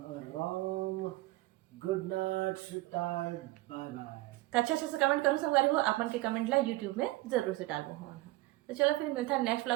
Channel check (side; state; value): left; quieter; 19.3 dB